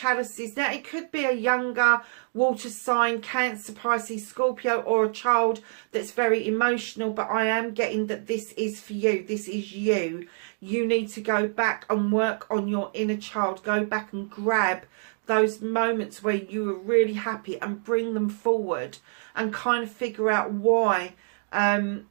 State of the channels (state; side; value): silent; left; digital silence